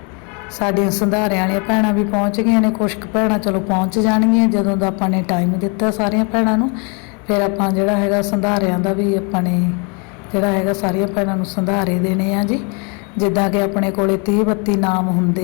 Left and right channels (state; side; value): quieter; right; 34.2 dB